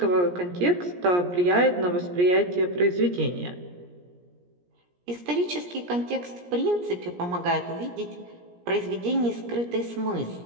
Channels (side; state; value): left; late; 17 ms